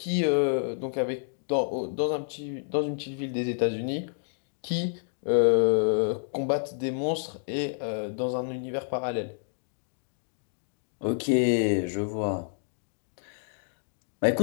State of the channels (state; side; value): silent; right; digital silence